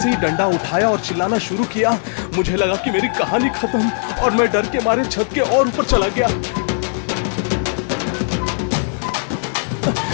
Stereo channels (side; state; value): right; silent; digital silence